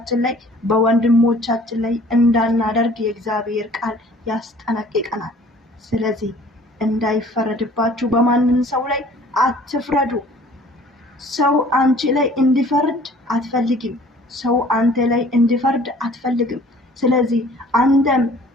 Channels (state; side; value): normal; both; correlation 0.52